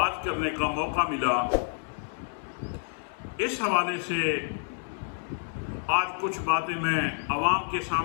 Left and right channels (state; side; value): silent; right; 59 dB below the other